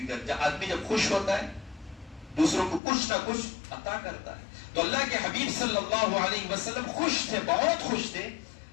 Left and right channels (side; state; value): right; drops out; at 2.8 s